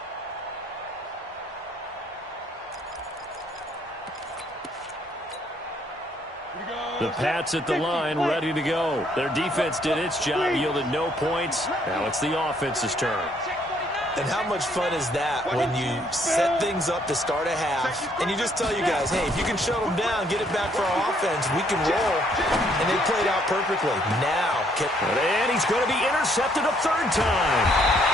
The Pats at the line, ready to go. Their defense did its job, yielded no points. Now it's the offense's turn. And how much fun is that when you set things up to start a half and you just tell you guys, hey, if you can shut them down, get it back for our offense, we can roll. And they played out perfectly. Now, and he's going to be intercepted a 3rd time.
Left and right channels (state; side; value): normal; both; correlation 0.67